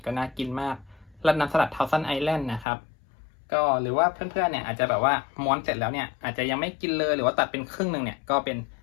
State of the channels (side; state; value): right; drops out; at 2.7 s